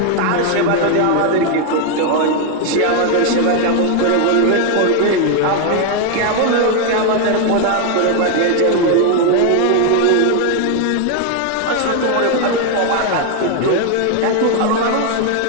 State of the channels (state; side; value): different; both; correlation 0.01